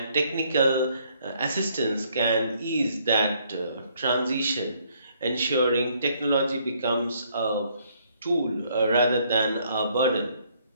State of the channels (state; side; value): inverted; both; correlation -0.67